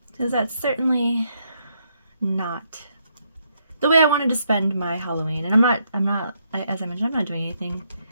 Because that's certainly not the way I wanted to spend my Halloween. And I'm not, as I mentioned, I'm not doing anything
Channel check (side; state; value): both; inverted; correlation -0.76